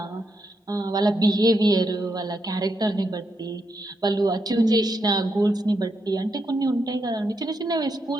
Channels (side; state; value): both; normal; correlation 0.82